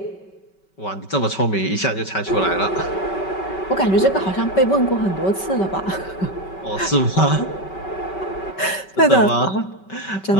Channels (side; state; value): right; late; 5.2 ms